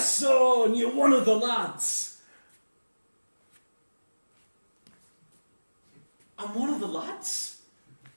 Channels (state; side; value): inverted; both; correlation -1.00